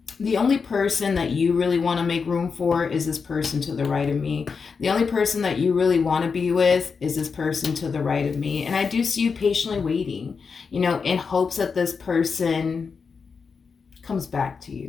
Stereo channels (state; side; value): quieter; right; 5.4 dB